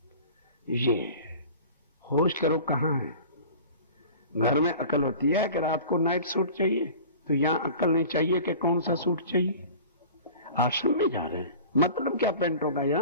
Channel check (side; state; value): both; inverted; correlation -0.41